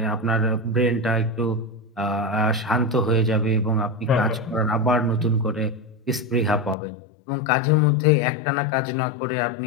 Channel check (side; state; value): right; drops out; at 6.8 s